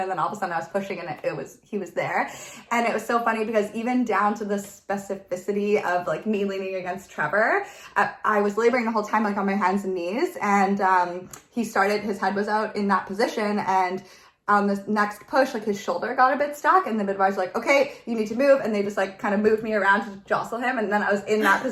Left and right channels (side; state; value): both; identical; correlation 1.00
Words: then all of a sudden I was pushing, and he was there. And it was so funny because even down to the specificity of like me leaning against Trevor, I was laboring the whole time like on my hands and knees, and his head was out in that position, and on the next push, like his shoulder got a bit stuck, and the midwives were like, okay, you need to move. And they just like kind of moved me around to jostle him. And then I was in that